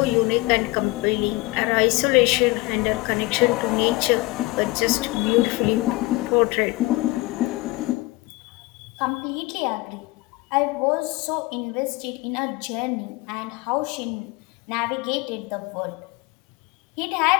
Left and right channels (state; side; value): quieter; right; 22.1 dB